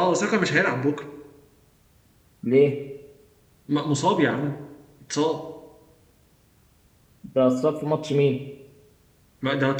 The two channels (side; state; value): both; identical; correlation 1.00